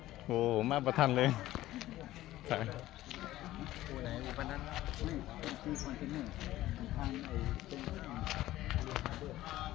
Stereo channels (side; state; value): right; quieter; 15.4 dB